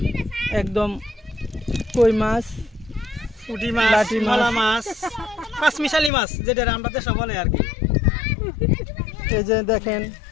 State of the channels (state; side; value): drops out; right; at 6.1 s